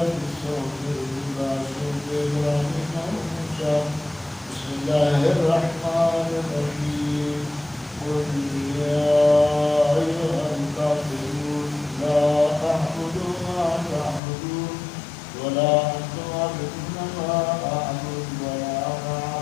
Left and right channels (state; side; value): drops out; right; at 14.2 s